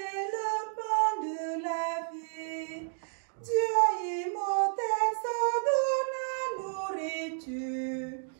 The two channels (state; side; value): silent; left; digital silence